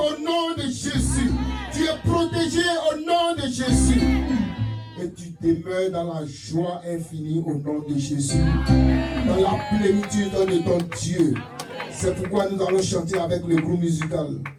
nom de Jésus. Tu es protégé au nom de Jésus. Et tu demeures dans la joie infinie au nom de Jésus. Dans la plénitude de ton Dieu. C'est pourquoi nous allons chanter avec le groupe musical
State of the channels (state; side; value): identical; both; correlation 1.00